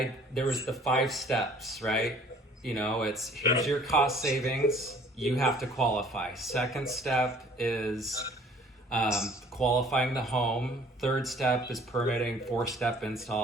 there was the 5 steps, right? You know, it's here's your cost savings. You have to qualify. Second step is qualifying the home. Third step is permitting. 4-step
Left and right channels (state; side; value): normal; both; correlation 0.54